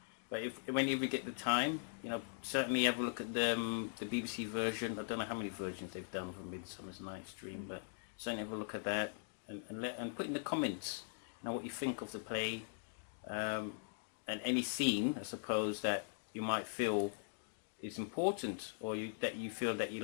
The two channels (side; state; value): right; silent; digital silence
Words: But whenever you get the time, certainly have a look at the BBC version. I don't know how many versions they've done for Midsummer's Night's Dream, but certainly have a look at that and put in the comments what you think of the play and any scene, I suppose, that you might feel is important or that you feel that